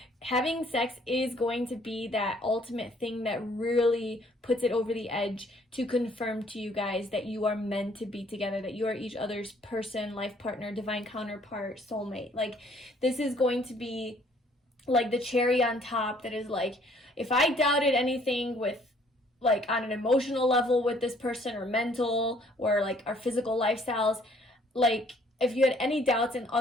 having sex is going to be that ultimate thing that really puts it over the edge to confirm to you guys that you are meant to be together, that you are each other's person, life partner, divine counterpart, soulmate. Like this is going to be like the cherry on top that is like, if I doubted anything with like on an emotional level with this person, or mental, or like our physical lifestyles. Like if you had any doubts in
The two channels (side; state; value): both; normal; correlation 0.61